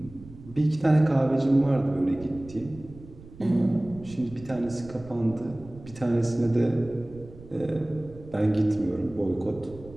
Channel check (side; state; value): right; noise; rumble, 19 dB below the sound